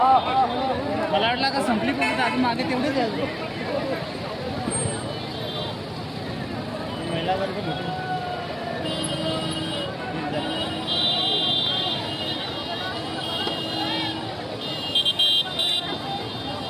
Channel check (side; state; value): both; identical; correlation 1.00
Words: मला वाटलं का संपली पण आधी मागे तेवढेच महिला वर्ग